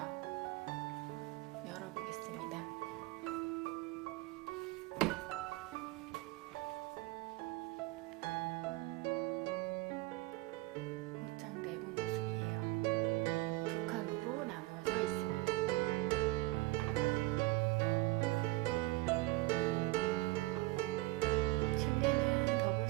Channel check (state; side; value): quieter; left; 20.6 dB